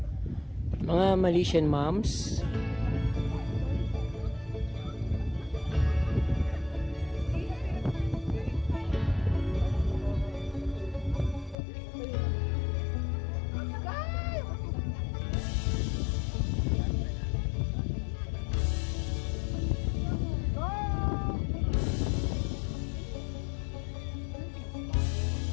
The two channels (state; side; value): drops out; right; at 11.6 s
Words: Mga Malaysian moms.